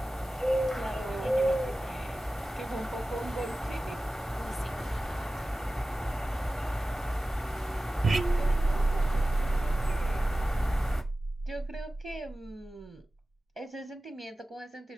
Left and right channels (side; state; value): both; normal; correlation 0.96